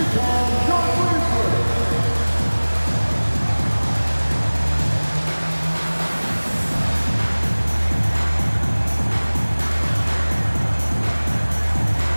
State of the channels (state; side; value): inverted; both; correlation -1.00